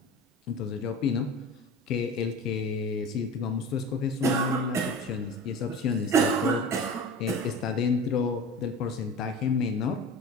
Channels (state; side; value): normal; both; correlation 0.34